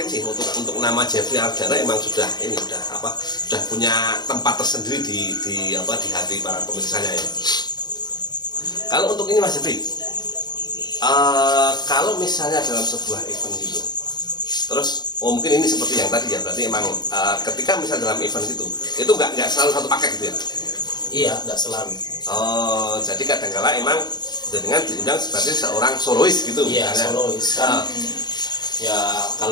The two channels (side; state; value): right; late; 0.20 ms